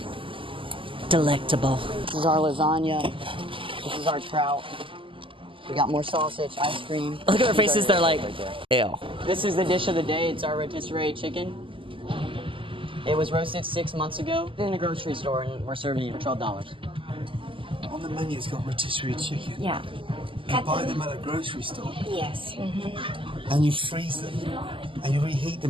Delectable. This is our lasagna. This is our trout. We got more sausage, ice cream. Look at their faces, they're like, ew. This is the dish of the day. It's our rotisserie chicken. It was roasted 6 months ago in a grocery store, and we're serving it for $12. On the menu, it's got rotisserie chicken. Yeah. You buy them at a grocery store. Yes. And you freeze them. And you reheat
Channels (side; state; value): left; late; 0.25 ms